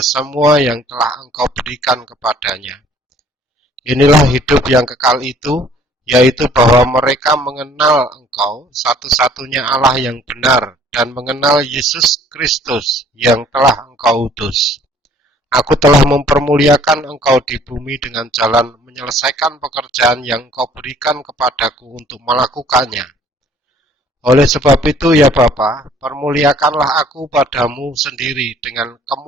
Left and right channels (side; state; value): both; normal; correlation 0.57